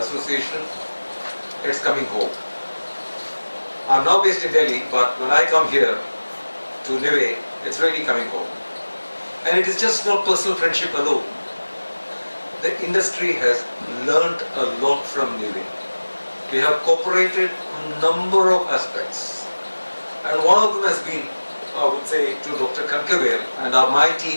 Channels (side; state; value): both; inverted; correlation -1.00